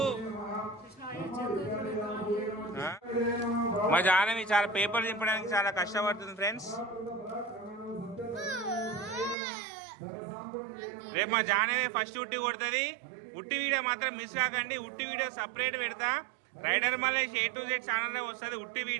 మా జానవి చాలా పేపర్ చింపడానికి చాలా కష్టపడుతుంది ఫ్రెండ్స్. రేపు మా జానవి ఫస్ట్ ఉట్టి కొడుతుంది. ఉట్టి వీడియో మాత్రం మిస్ కాకండి. ఉట్టి వీడియో సపరేట్ పెడతా, rider Malesh A to Z ఛానల్లో వస్తుంది ఉట్టి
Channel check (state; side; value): drops out; left; at 9.3 s